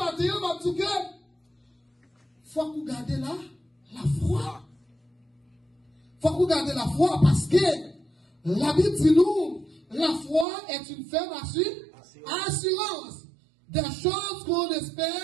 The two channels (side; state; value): left; drops out; at 10.5 s